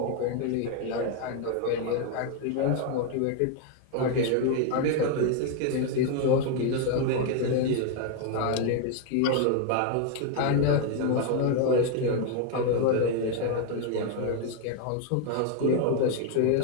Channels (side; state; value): both; different; correlation 0.01